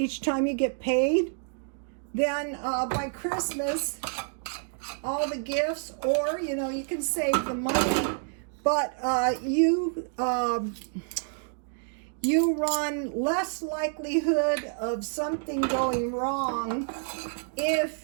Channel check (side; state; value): left; silent; 59 dB below the other